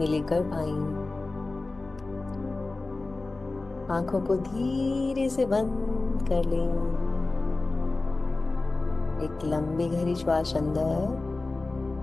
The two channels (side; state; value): right; quieter; 3.3 dB